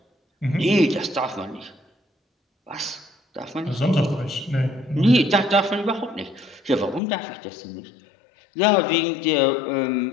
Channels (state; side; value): drops out; right; at 7.0 s